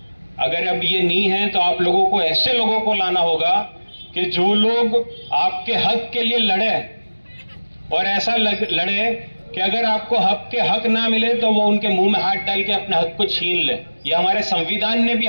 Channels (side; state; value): both; inverted; correlation -1.00